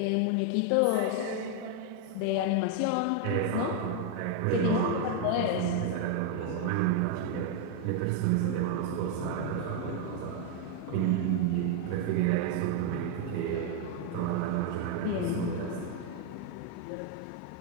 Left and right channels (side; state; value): both; different; correlation 0.01